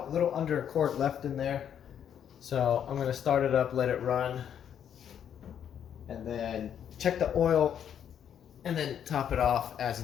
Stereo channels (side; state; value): right; quieter; 9.0 dB